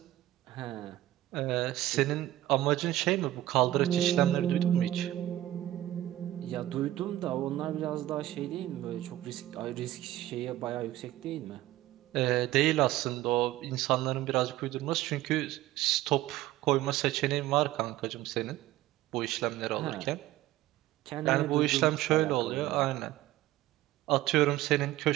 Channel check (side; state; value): left; quieter; 15.1 dB